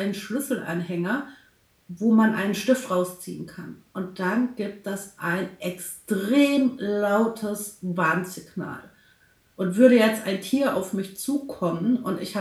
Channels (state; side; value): identical; both; correlation 1.00